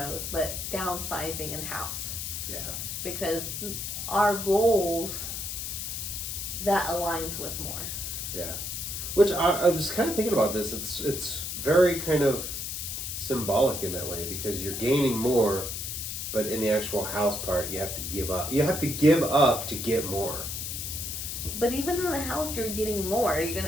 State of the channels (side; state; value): left; noise; hiss, 5 dB below the sound